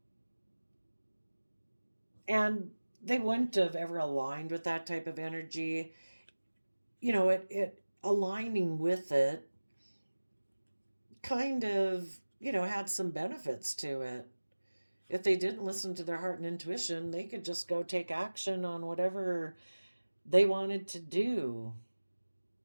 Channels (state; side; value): inverted; both; correlation -1.00